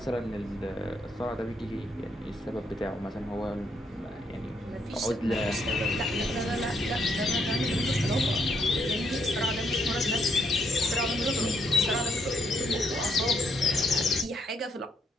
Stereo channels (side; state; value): both; normal; correlation 0.74